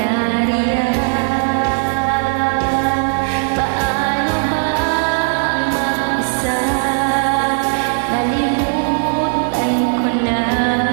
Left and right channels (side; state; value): left; silent; digital silence